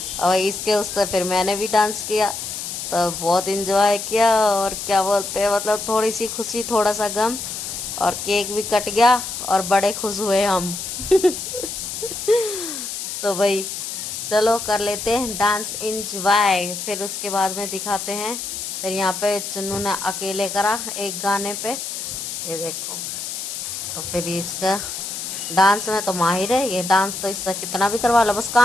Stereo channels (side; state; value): left; noise; hiss, 6 dB below the sound